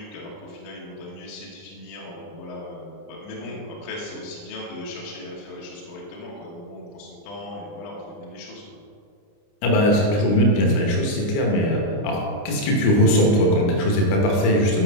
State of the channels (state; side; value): late; right; 30 ms